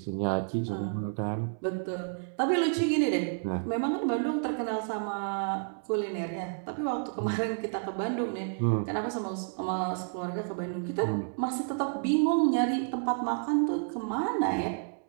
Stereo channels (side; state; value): left; silent; 58 dB below the other